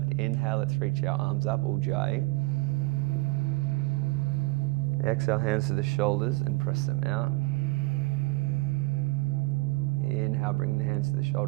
Inhale, let's reach our arms up, Ujjayi. Exhale, hands to the shoulders and press them out. Inhale, bring the hands to the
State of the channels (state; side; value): quieter; left; 23.6 dB